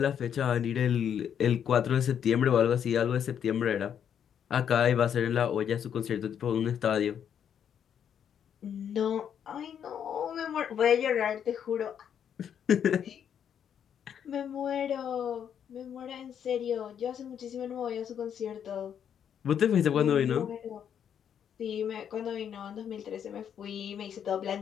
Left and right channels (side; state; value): right; quieter; 8.6 dB